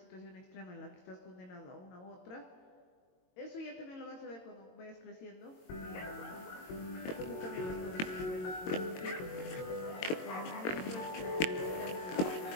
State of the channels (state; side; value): late; right; 22 ms